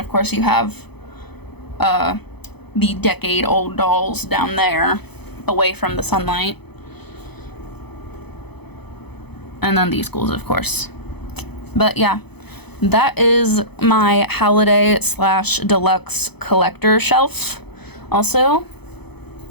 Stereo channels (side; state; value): right; late; 0.98 ms